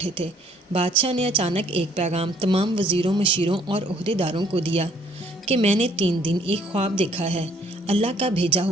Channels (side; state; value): both; normal; correlation 0.63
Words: تھے۔ بادشاہ نے اچانک ایک پیغام تمام وزیروں، مشیروں اور عہدیداروں کو دیا کہ میں نے 3 دن ایک خواب دیکھا ہے۔ اللہ کا بھیجا